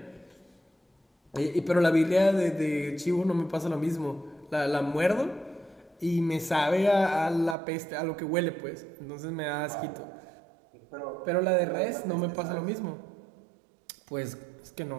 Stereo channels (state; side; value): drops out; left; at 7.6 s